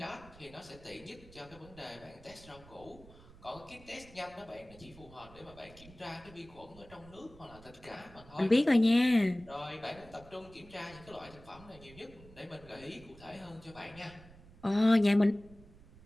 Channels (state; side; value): noise; right; rumble, 21 dB below the sound